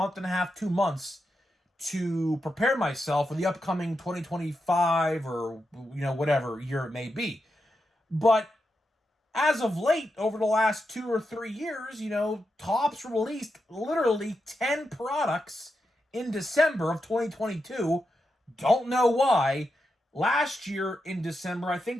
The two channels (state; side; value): normal; both; correlation 0.87